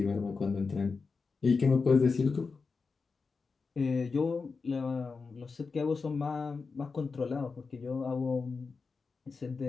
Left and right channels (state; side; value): quieter; right; 4.7 dB